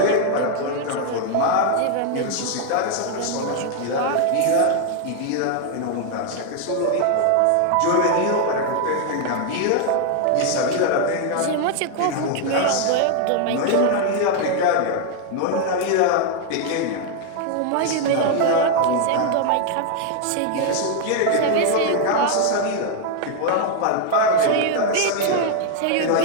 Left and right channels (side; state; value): both; different; correlation 0.00